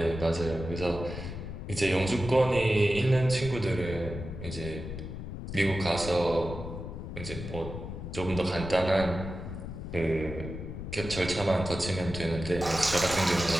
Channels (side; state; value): left; noise; rumble, 8 dB below the sound